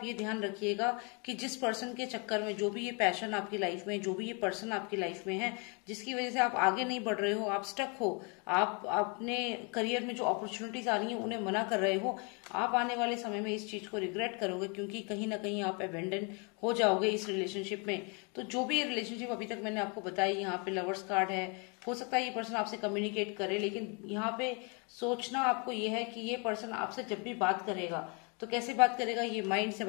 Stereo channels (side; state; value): right; quieter; 33.9 dB